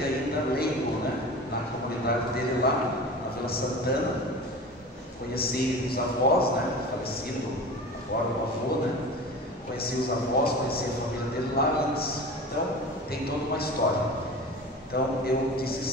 ainda leigo, na comunidade dele lá, na Vila Santana. Conheci os avós, falecido agora o avô, Conheci os avós, conheci a família dele lá antes. Então, tem toda uma história. Então, eu disse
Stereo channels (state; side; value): normal; both; correlation 0.34